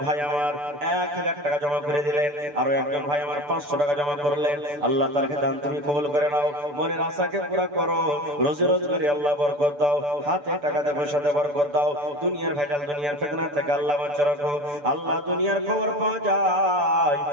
ভাই আমার 1000 টাকা জমা করে দিলেন, আর একজন ভাই আমার 500 টাকা জমা করলেন। আল্লাহ তারকে দান তুমি কবুল করে নাও, মনের আশাকে পুরা করো, রোজি রোজগারে আল্লাহ বরকত দাও, হাতে টাকাতে পয়সাতে বরকত দাও, দুনিয়ার ভেজাল দুনিয়ার ফিতনা থেকে আল্লাহ বাঁচিয়ে রাখো। আল্লাহ দুনিয়ার খবর পাওয়া যায়,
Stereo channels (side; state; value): left; late; 6.9 ms